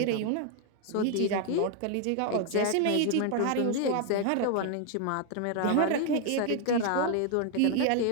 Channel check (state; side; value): different; both; correlation 0.00